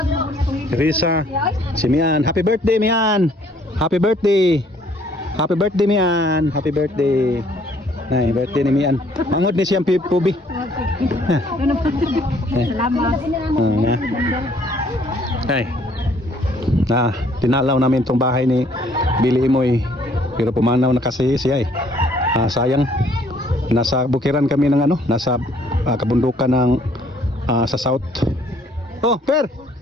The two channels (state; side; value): normal; both; correlation 0.62